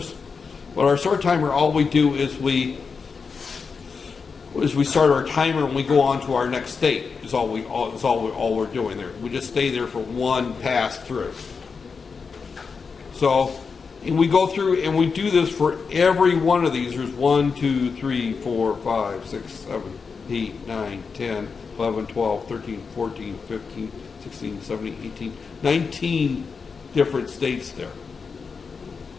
But our start timer, all we do is we start our timer and we go on to our next state. Is all we're doing there. We just stay there for one pass through. So, and we go through and we do this for every one of these. There's 1, 2, 3, 4, 5, 6, 7, 8, 9, 10, 11, 12, 13, 14, 15, 16, 17, 18, 19 different states there.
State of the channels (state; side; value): quieter; right; 5.3 dB